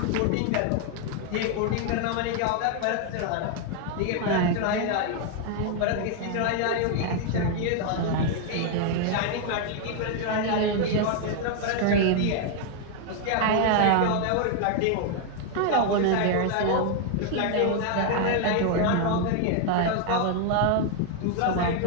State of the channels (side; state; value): both; different; correlation 0.00